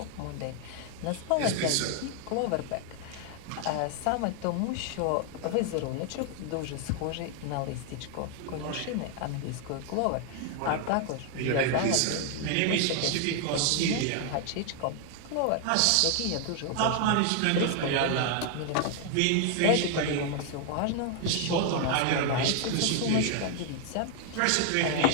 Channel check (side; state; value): both; different; correlation 0.00